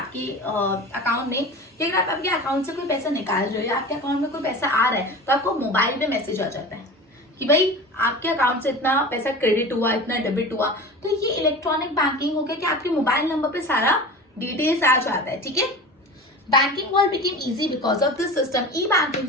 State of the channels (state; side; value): normal; both; correlation 0.34